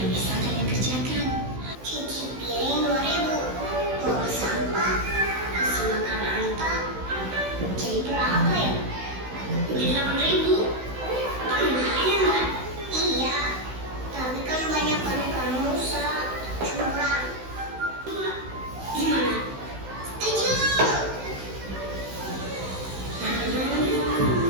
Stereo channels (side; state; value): left; late; 16 ms